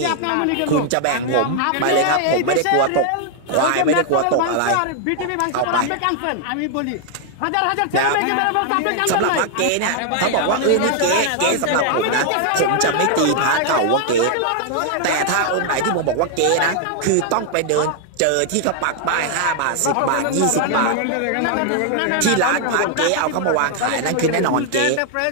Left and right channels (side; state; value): both; different; correlation 0.00